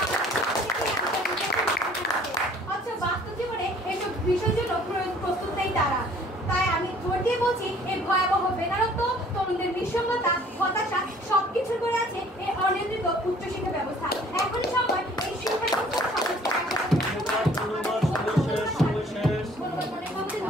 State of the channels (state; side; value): normal; both; correlation 0.55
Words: বাস্তব জীবনে এসব বিষয়ের জন্য প্রস্তুত নেই তারা। তাই আমি জোর দিয়ে বলছি, এই ভয়াবহ বেকারত্ব, তরুণদের নিঃসঙ্গতা, হতাশা সবকিছুর করে আছে এই অনিয়ন্ত্রিত উচ্চশিক্ষা ব্যবস্থা। এখনই সময় এই শিক্ষা